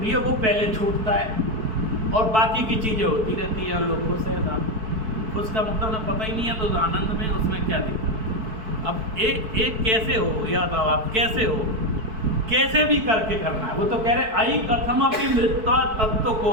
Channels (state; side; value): late; left; 4.6 ms